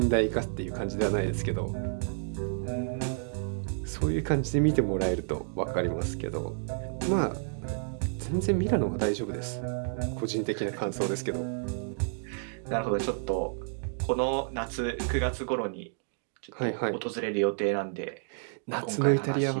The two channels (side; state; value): left; silent; digital silence